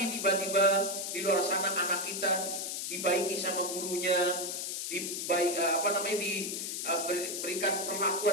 tiba-tiba di luar sana anak kita dibaiki sama gurunya, diberikan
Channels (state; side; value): noise; left; hiss, 3 dB below the sound